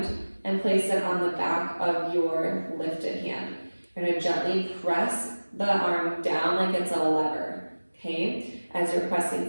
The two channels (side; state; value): both; inverted; correlation -1.00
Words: and place it on the back of your lifted hand. You're going to gently press the arm down like it's a lever, okay? As you're